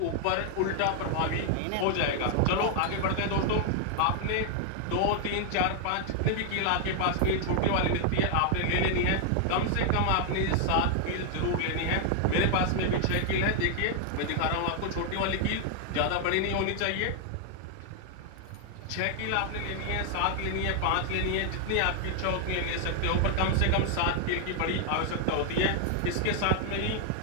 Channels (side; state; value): both; different; correlation 0.00